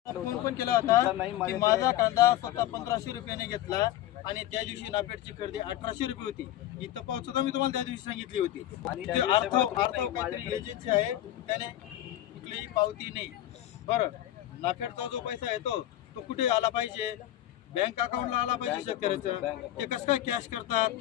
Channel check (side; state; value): right; quieter; 13.5 dB